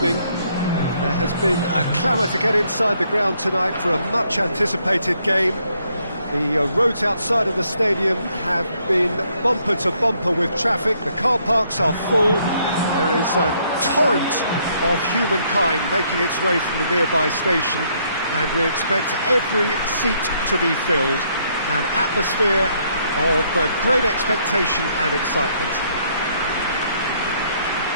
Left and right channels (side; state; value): both; inverted; correlation -0.70